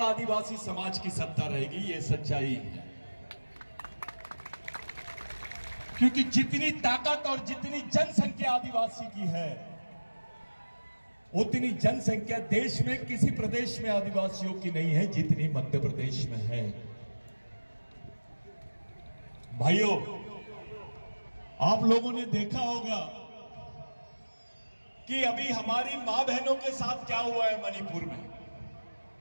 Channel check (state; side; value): inverted; both; correlation -1.00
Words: आदिवासी समाज की सत्ता रहेगी। यह सच्चाई है। क्योंकि जितनी ताकत और जितनी जनसंख्या आदिवासी की है, उतनी जनसंख्या देश में किसी प्रदेश में आदिवासियों की नहीं है जितनी मध्य प्रदेश में है। भाइयों, आप लोगों ने देखा होगा कि अभी हमारी मां बहनों के साथ क्या हुआ है मणिपुर में।